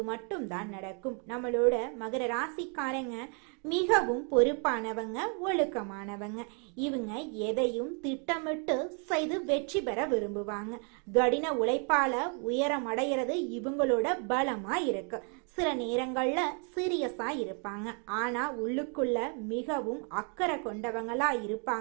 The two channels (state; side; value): quieter; left; 38.8 dB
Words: மட்டும்தான் நடக்கும். நம்மளோட மகர ராசிக்காரங்க மிகவும் பொறுப்பானவங்க, ஒழுக்கமானவங்க. இவங்க எதையும் திட்டமிட்டு செய்து வெற்றி பெற விரும்புவாங்க. கடின உழைப்பால உயரம் அடைகிறது இவங்களோட பலமா இருக்கு. சில நேரங்கள்ல சீரியஸா இருப்பாங்க, ஆனா உள்ளுக்குள்ள மிகவும் அக்கறை கொண்டவங்களா